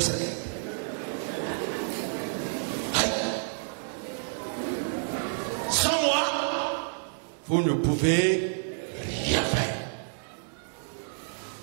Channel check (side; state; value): left; silent; digital silence